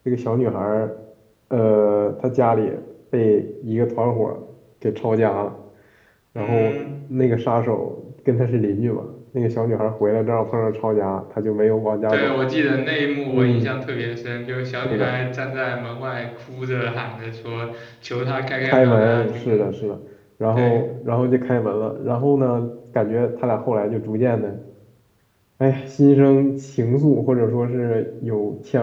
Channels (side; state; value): both; identical; correlation 1.00